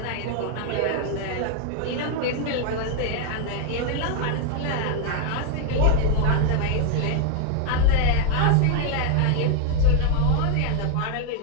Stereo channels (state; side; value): different; both; correlation 0.00